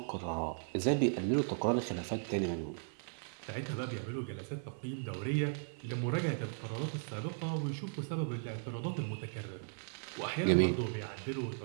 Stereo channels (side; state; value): left; silent; 53 dB below the other